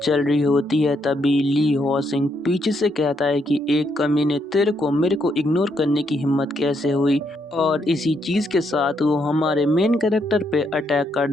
चल रही होती है तभी ली हॉसिंग पीछे से कहता है कि एक कमी ने तेरे को मेरे को इग्नोर करने की हिम्मत कैसे हुई। और इसी चीज़ के साथ वो हमारे मेन कैरेक्टर पे अटैक कर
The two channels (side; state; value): both; normal; correlation 0.76